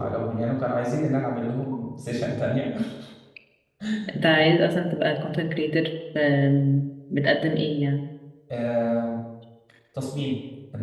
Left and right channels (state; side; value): identical; both; correlation 1.00